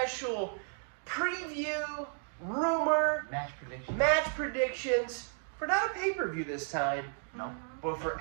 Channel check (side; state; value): left; silent; 56 dB below the other